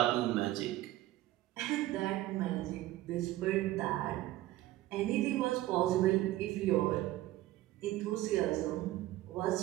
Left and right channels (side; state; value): left; quieter; 15.8 dB